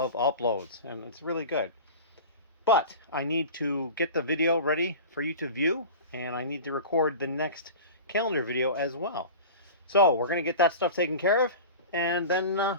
uploads, and it's really good. But I need to get the video ready for you to view, and I need to record the next calendar video as well. So we're going to get that stuff taken care of, and then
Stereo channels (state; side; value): inverted; both; correlation -0.34